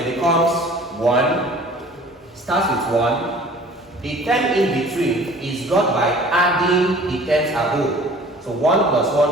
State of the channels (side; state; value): both; normal; correlation 0.48